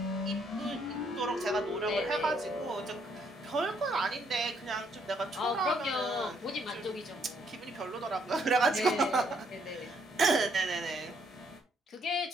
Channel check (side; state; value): both; normal; correlation 0.70